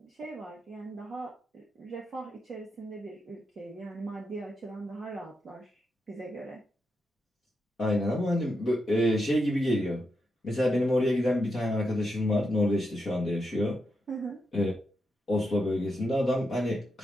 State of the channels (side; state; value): both; normal; correlation 0.85